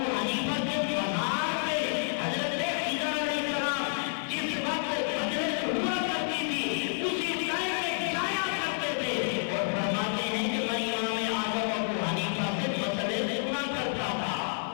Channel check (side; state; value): right; silent; 58 dB below the other